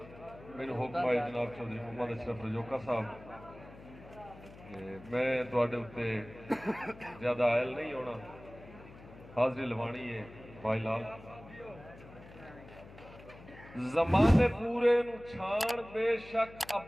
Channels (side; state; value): left; noise; hum, 19 dB below the sound